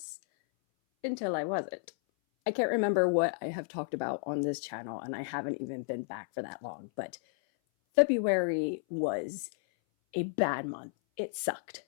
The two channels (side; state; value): right; silent; 56 dB below the other